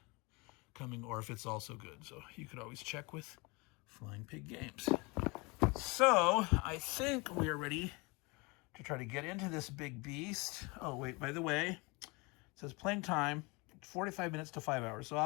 coming, or if it's also good. So you could always check with Flying Pig Games. So I think we are ready to try to get into this big beast. Oh wait, by the way, says playing time, 45 minutes to 5 hours. So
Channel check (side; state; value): right; quieter; 27.1 dB